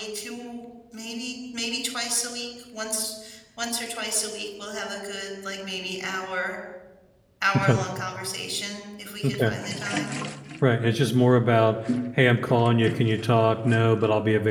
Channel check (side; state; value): both; identical; correlation 1.00